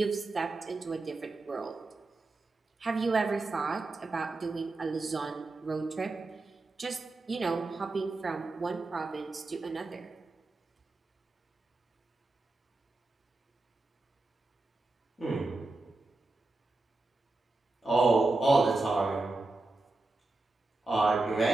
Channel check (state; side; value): quieter; left; 3.2 dB